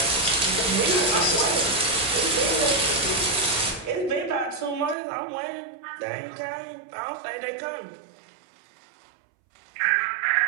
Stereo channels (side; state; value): left; drops out; at 5.0 s